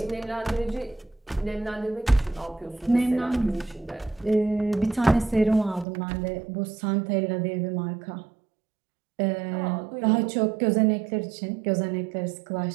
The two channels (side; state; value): left; drops out; at 5.9 s